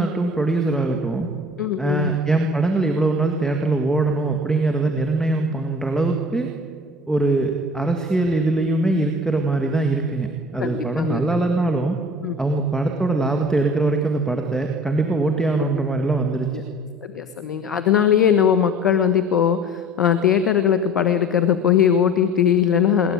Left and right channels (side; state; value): both; normal; correlation 0.44